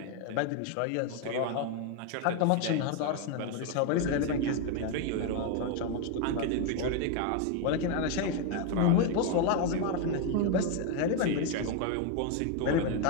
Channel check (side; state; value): both; different; correlation 0.01